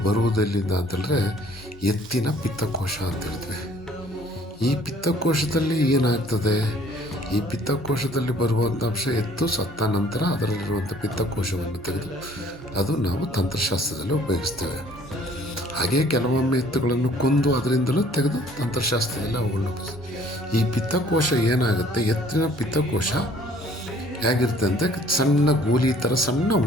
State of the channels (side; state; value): both; normal; correlation 0.57